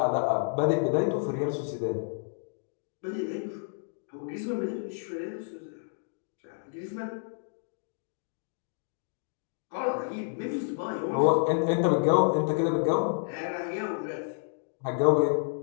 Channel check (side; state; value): right; silent; digital silence